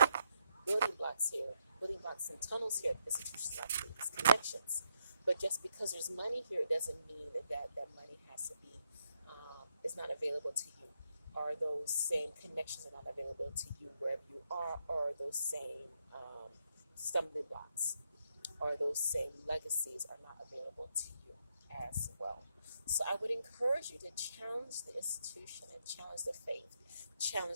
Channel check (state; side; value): inverted; both; correlation -0.78